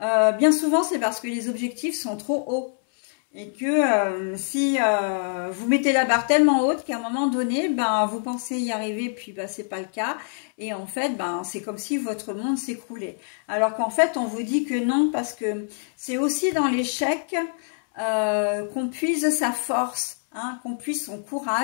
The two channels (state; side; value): silent; right; 62 dB below the other